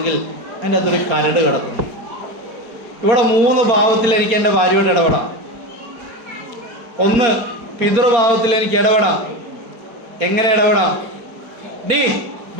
എൻ്റെ അകത്തൊരു കരട് കിടക്കുന്നു. ഇവിടെ മൂന്ന് ഭാവത്തിൽ എനിക്ക് എൻ്റെ ഭാര്യയോട് ഇടപെടാം. ഒന്ന്, പിതൃഭാവത്തിൽ എനിക്ക് ഇടപെടാം. എങ്ങനെ ഇടപെടാം? ഡീ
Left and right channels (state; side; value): late; left; 4.3 ms